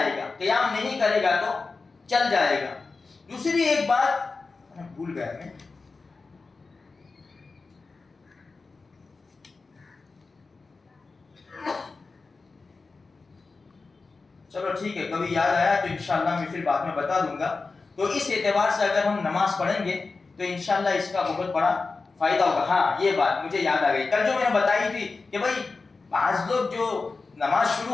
گا. قیام نہیں کرے گا تو چل جائے گا. دوسری ایک بات بھول گیا میں, چلو ٹھیک ہے, کبھی یاد آیا تو انشاءاللہ میں پھر بعد میں بتا دوں گا. تو اس اعتبار سے اگر ہم نماز پڑھیں گے تو انشاءاللہ اس کا بہت بڑا فائدہ ہوگا. ہاں, یہ بات مجھے یاد آ گئی, کل جو میں نے بتائی تھی کہ بھائی بعض لوگ جو نماز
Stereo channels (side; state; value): right; quieter; 4.0 dB